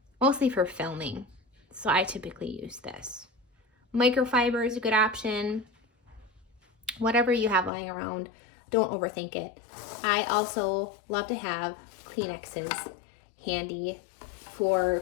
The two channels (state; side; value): drops out; right; at 7.7 s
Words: mostly for filming, so I typically use this. Microfiber is a good option. Whatever you have lying around, don't overthink it. I also love to have Kleenexes handy for